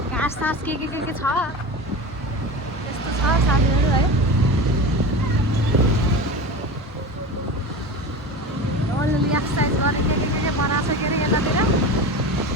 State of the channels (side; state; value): both; normal; correlation 0.29